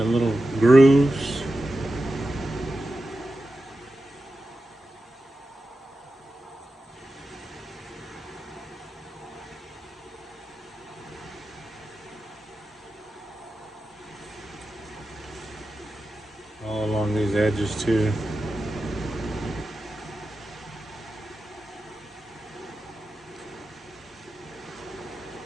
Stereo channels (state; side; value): normal; both; correlation 0.92